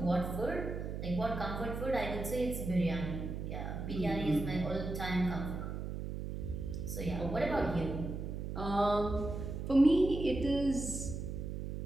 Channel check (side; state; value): right; noise; hum, 5 dB below the sound